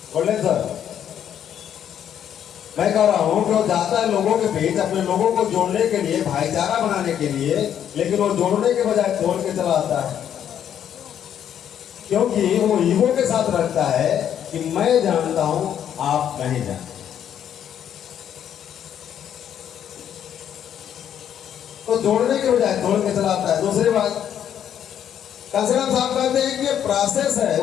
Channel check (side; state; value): right; quieter; 9.6 dB